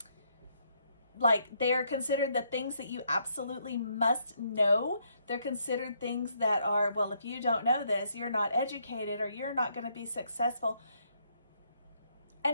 like they are considered the things that you absolutely must know. They're considered things that are, well, if you don't know this, you're not educated or you're not going to be successful.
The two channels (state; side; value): inverted; both; correlation -0.73